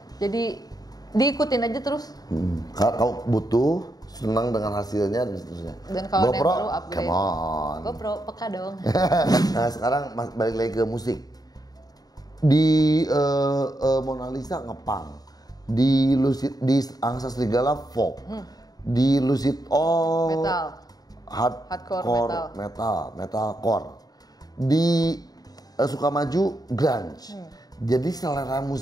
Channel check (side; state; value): right; late; 0.18 ms